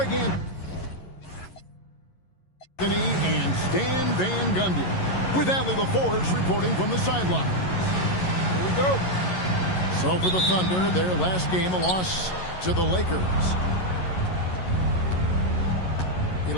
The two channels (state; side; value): late; right; 11 ms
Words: Anthony and Stan Van Gundy, with Allie LaForge reporting from the sidelines. Here we go. So for the Thunder, their last game, a loss to the Lakers.